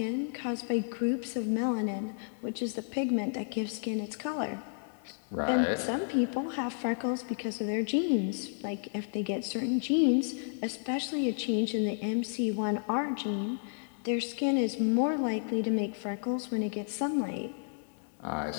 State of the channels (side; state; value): right; silent; digital silence